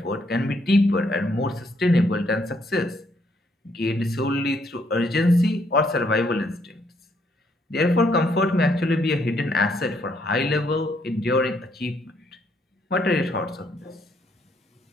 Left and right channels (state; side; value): normal; both; correlation 0.71